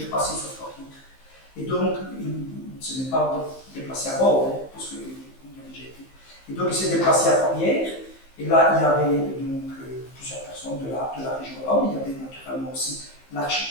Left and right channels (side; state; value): right; late; 15 ms